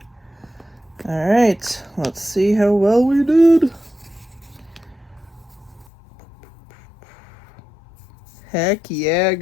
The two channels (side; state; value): right; drops out; at 5.9 s